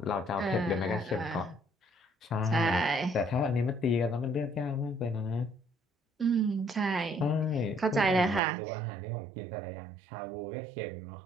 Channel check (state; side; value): drops out; left; at 8.4 s